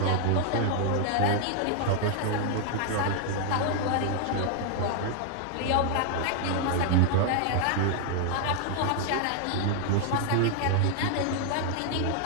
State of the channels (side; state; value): both; different; correlation 0.00